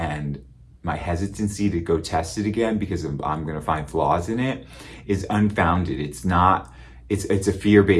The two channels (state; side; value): identical; both; correlation 1.00